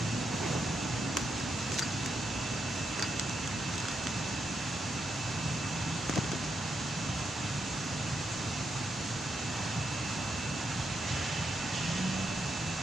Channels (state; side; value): normal; both; correlation 0.82